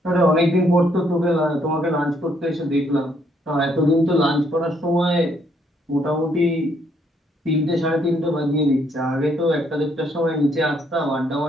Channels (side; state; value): both; normal; correlation 0.70